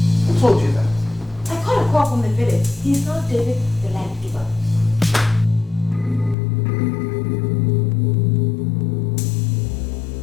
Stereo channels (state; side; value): drops out; right; at 6.4 s